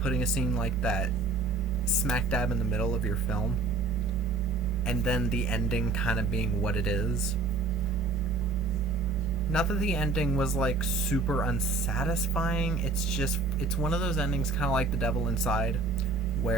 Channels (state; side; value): quieter; left; 3.7 dB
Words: putting a scene like that smack dab in the middle of your film, and then the ending kind of being what it is. Not that the ending was like super unsatisfying, it's one of those endings kind of like The Devil Inside,